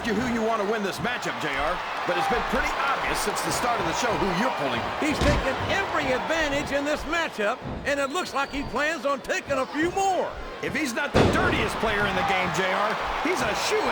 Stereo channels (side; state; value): both; identical; correlation 1.00